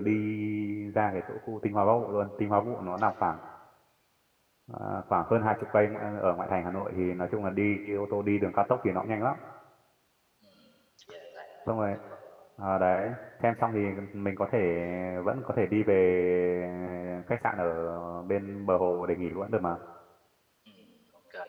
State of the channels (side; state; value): both; identical; correlation 1.00